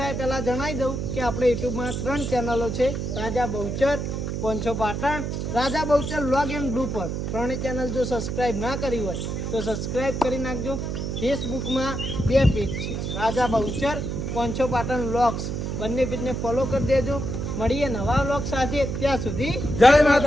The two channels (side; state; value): right; noise; hum, 3 dB below the sound